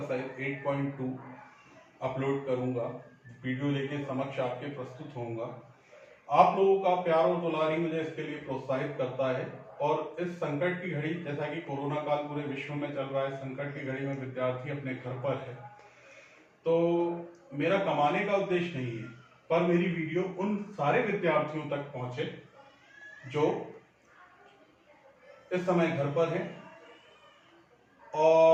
8.2 अपलोड करूंगा, वीडियो लेके समक्ष आपके प्रस्तुत होऊंगा। आप लोगों का प्यार और दुलार ही मुझे इसके लिए प्रोत्साहित करता है। और इस संकट की घड़ी, जैसा कि कोरोना काल पूरे विश्व में चल रहा है, संकट की घड़ी में विद्यार्थी अपने घर पर है, तो मेरा कमाने का उद्देश्य नहीं है, पर मेरी वीडियो उन सारे विद्यार्थियों तक पहुंचे जो इस समय घर पर हैं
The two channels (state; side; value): identical; both; correlation 1.00